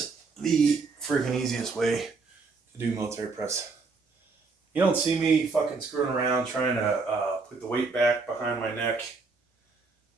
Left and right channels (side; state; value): left; quieter; 4.2 dB